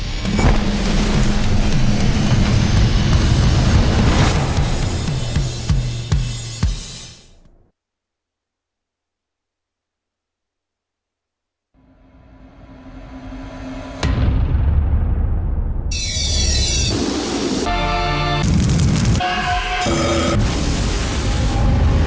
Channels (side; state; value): both; identical; correlation 1.00